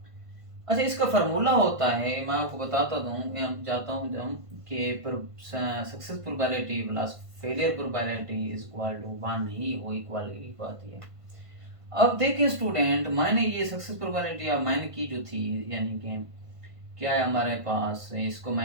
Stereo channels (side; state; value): left; late; 1.5 ms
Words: अच्छा, इसका फार्मूला होता है, मैं आपको बताता दूं, मैं चाहता हूँ हम कि success probability plus failure probability is equal to 1 ही वो इक्वल की बात है। अब देखिए स्टूडेंट, मैंने ये सक्सेस प्रोबेबिलिटी अब मैंने की जो थी, यानी कि क्या है हमारे पास, इसको